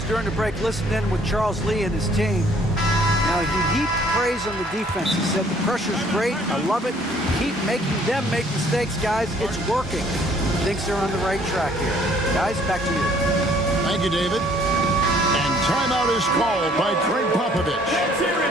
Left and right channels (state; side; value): normal; both; correlation 0.60